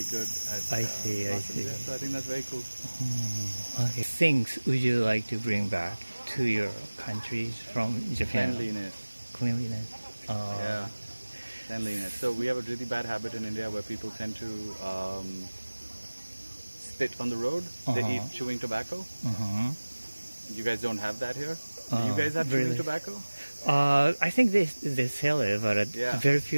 good. I see. Yeah, so I think that's very cool. Okay. Things would you like to bring back to your countries from Japan? Cleanliness. Yeah. Cleanliness. So we have a really bad habit in India where people tend to spit on the road. They eat chewing tobacco. You guys don't have that here? Do you guys have chewing tobacco? I think they sell it, but very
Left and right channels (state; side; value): inverted; both; correlation -1.00